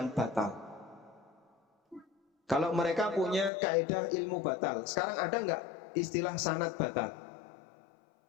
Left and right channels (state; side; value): drops out; right; at 3.5 s